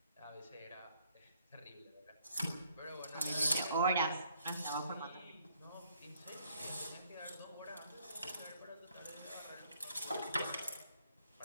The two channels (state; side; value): inverted; both; correlation -0.66